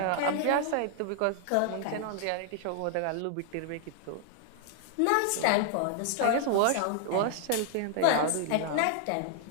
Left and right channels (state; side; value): different; both; correlation 0.00